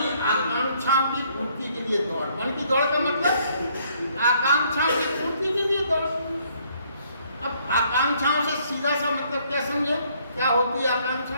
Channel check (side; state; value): both; inverted; correlation -0.67